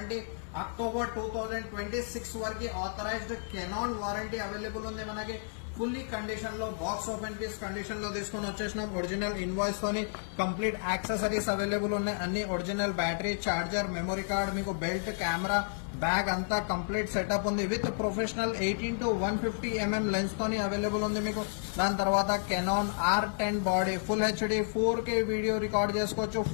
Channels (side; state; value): right; silent; 56 dB below the other